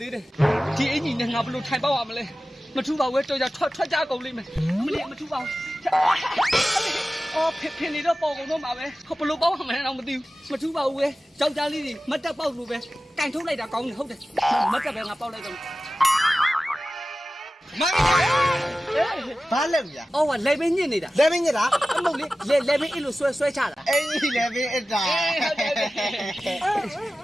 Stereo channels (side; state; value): both; normal; correlation 0.95